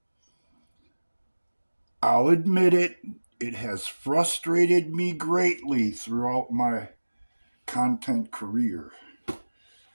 I'll admit it, it has frustrated me greatly throughout my content career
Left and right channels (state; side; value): inverted; both; correlation -1.00